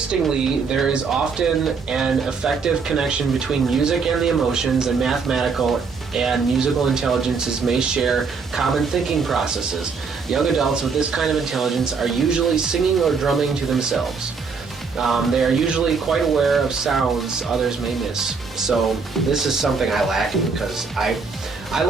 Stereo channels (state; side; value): quieter; left; 5.1 dB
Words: there is often an effective connection between music and the emotions, and mathematical and musical intelligences may share common thinking processes. Young adults with this kind of intelligence are usually singing or drumming to themselves. They are usually quite aware of sounds others may miss. So this is something I lack in, because I